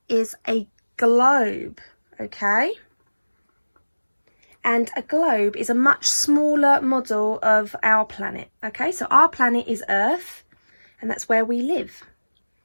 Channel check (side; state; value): both; inverted; correlation -1.00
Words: is a globe, okay? And a globe is a much smaller model of our planet, okay? So our planet is Earth, and that's where we live.